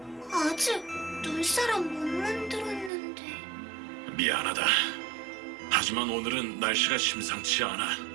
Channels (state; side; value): drops out; left; at 2.9 s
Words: 아직 눈사람 못 만들었는데. 미안하다. 하지만 오늘은 날씨가 심상치 않아.